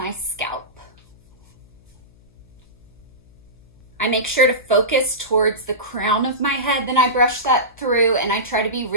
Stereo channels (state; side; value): noise; left; hum, 28 dB below the sound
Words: scalp. I make sure to focus towards the crown of my head, then I brush that through, and I try to be